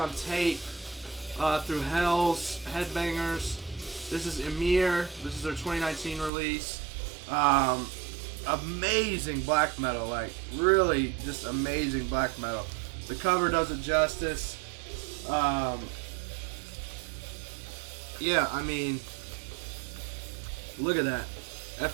tape through Hell's Headbangers. This is Emir. This is their 2019 release. Amazing black metal, like really just amazing black metal. The cover does it justice. Yeah, I mean, look at that. At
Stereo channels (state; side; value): drops out; left; at 6.3 s